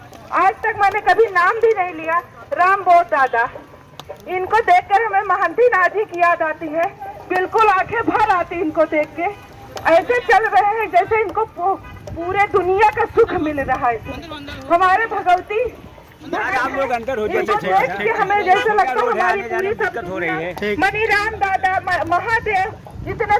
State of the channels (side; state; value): both; identical; correlation 1.00